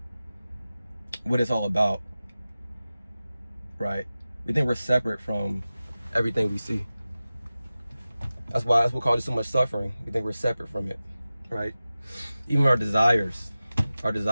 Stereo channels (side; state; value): both; inverted; correlation -0.96